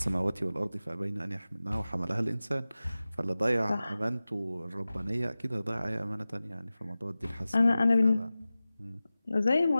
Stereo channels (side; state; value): both; inverted; correlation -0.96